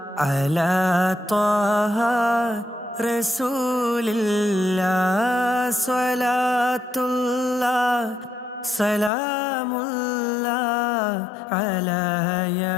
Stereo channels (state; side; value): drops out; right; at 9.1 s